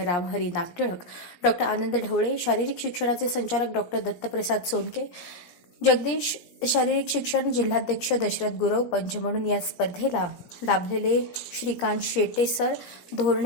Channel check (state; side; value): late; right; 17 ms